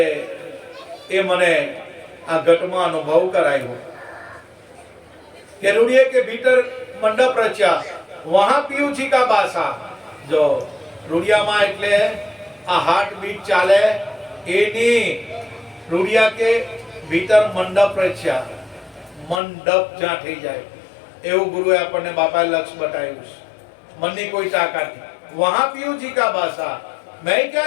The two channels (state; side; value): drops out; right; at 19.4 s